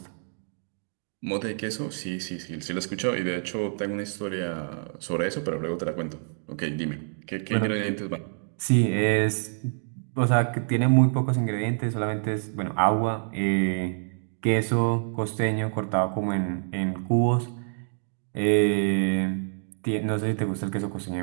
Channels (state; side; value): silent; left; digital silence